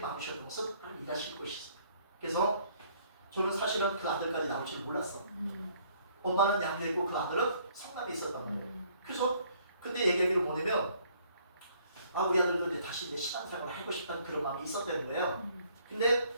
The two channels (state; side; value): inverted; both; correlation -0.63